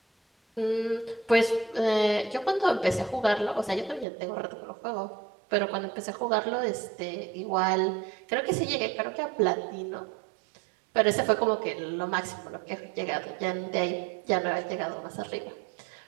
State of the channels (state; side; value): drops out; left; at 4.0 s